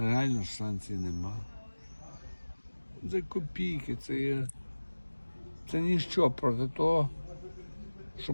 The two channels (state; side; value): inverted; both; correlation -1.00